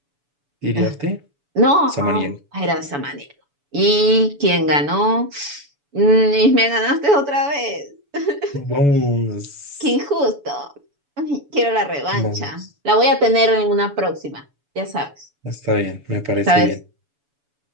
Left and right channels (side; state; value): left; late; 7.0 ms